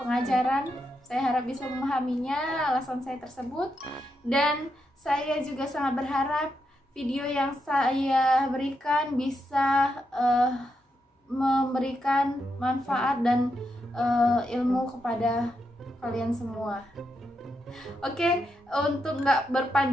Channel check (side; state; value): both; normal; correlation 0.83